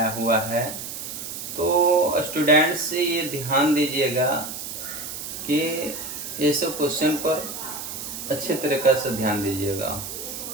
हुआ है। तो स्टूडेंट्स से ये ध्यान दीजिएगा कि ये सब क्वेश्चन पर अच्छे तरीक़े से ध्यान दीजिएगा,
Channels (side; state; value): right; noise; hiss, 8 dB below the sound